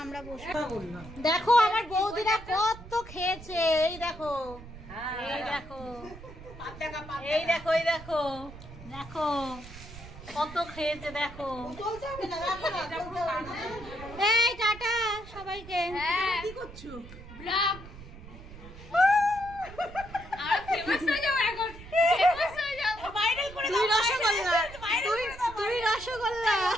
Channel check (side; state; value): right; noise; rumble, 15 dB below the sound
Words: আমরা বসবো। দেখো আমার বৌদিরা কত খেয়েছে, এই দেখো, এই দেখো, এই দেখো, এই দেখো, দেখো কত খেয়েছে, দেখো। এই টাটা সবাইকে। কি করছো? ব্লগ। তুই রসগোল্লা, তুই রসগোল্লা।